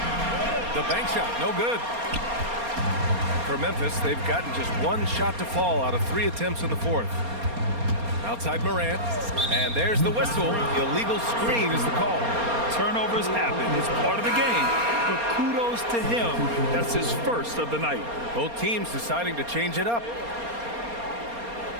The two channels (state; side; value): late; left; 4.3 ms